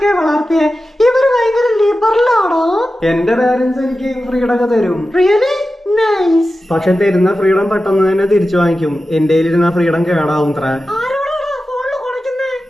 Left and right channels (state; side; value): normal; both; correlation 0.93